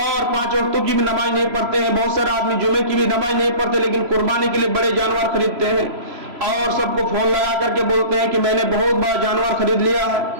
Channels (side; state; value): left; late; 3.0 ms